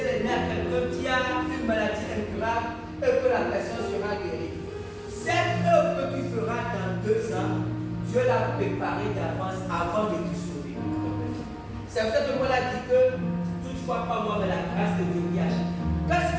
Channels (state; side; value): identical; both; correlation 1.00